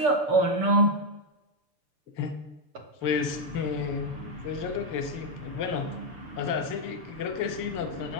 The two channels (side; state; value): left; late; 6.8 ms